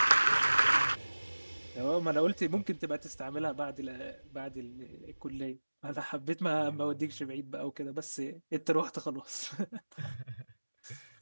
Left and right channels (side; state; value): both; inverted; correlation -1.00